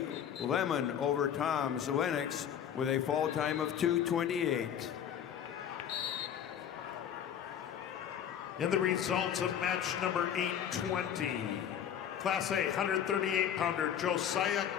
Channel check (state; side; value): quieter; right; 9.2 dB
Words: Lemon over Toms Lennox with a fall time of 228. And the results of match number 820. Class A 138-pounder Josiah